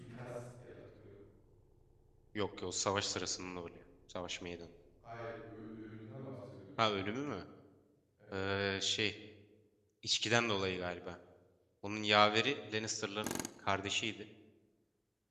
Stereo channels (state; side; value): identical; both; correlation 1.00